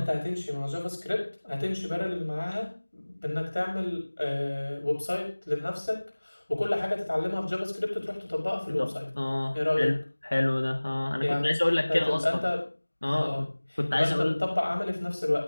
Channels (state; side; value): inverted; both; correlation -1.00